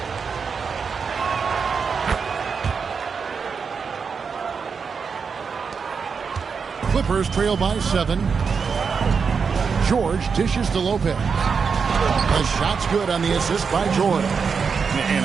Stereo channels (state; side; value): quieter; left; 5.7 dB